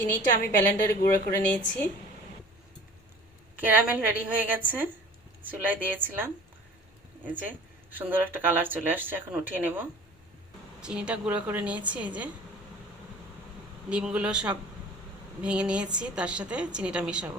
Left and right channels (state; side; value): normal; both; correlation 0.44